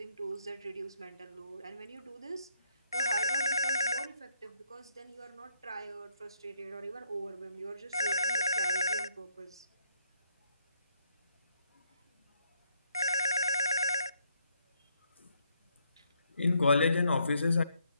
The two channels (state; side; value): inverted; both; correlation -0.74